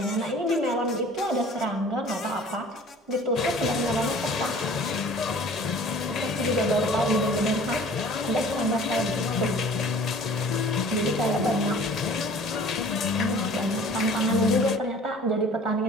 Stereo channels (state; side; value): normal; both; correlation 0.48